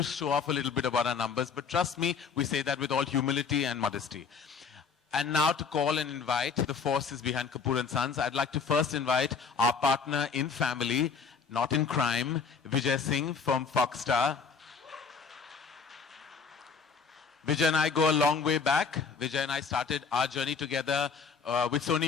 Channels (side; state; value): right; quieter; 5.5 dB